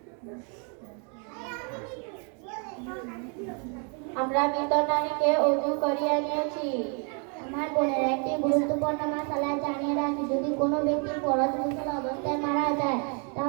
আমরা মৃত নারীকে উজু করিয়া নিয়েছি। আমার বোনের, একটি গুরুত্বপূর্ণ মাসালা জানিয়ে রাখি, যদি কোনো ব্যক্তি ফরজ গোসল অবস্থায় মারা যায়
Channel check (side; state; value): left; quieter; 38.0 dB